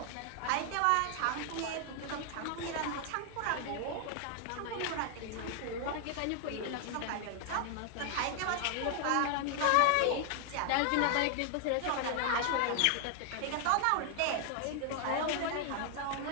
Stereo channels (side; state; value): both; different; correlation 0.00